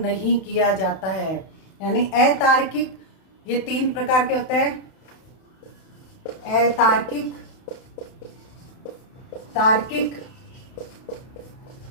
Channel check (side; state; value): right; late; 31 ms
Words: नहीं किया जाता है। यानी अतार्किक, ये 3 प्रकार के होते हैं, अतार्किक, तार्किक